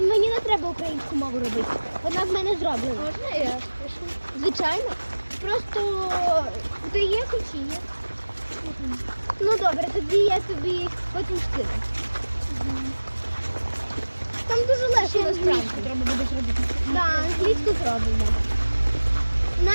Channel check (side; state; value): both; inverted; correlation -1.00